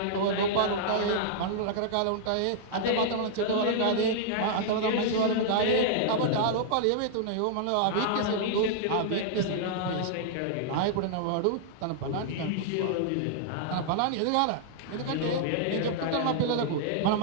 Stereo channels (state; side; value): different; both; correlation -0.01